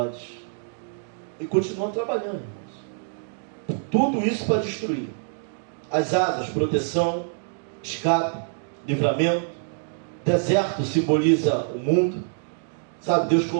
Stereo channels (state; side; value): silent; left; digital silence